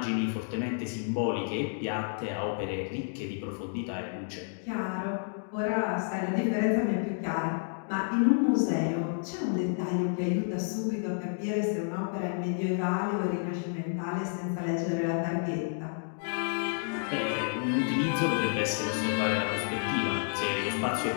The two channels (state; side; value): silent; right; digital silence